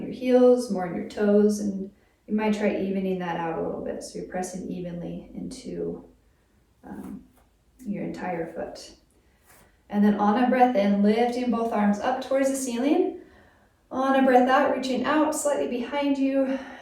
your heels, more in your toes, and you might try evening that out a little bit. So you're pressing evenly into your entire foot. And then on a breath in, lifting both arms up towards the ceiling. On a breath out, reaching out slightly behind you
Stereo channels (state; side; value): identical; both; correlation 1.00